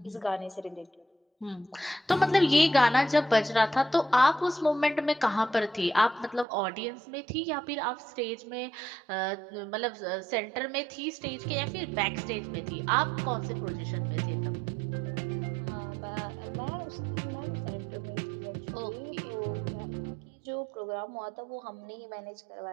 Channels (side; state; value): left; drops out; at 6.5 s